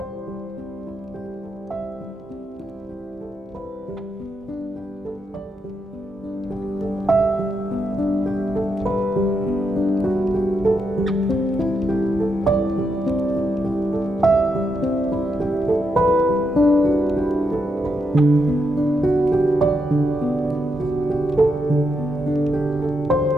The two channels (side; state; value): both; normal; correlation 0.82